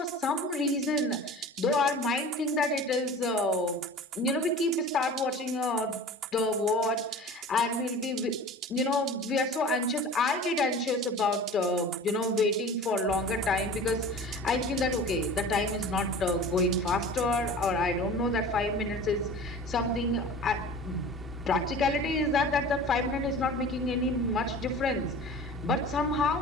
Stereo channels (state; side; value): normal; both; correlation 0.39